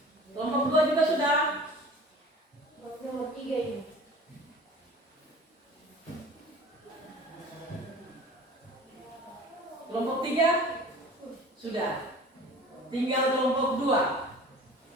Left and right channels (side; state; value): both; normal; correlation 0.42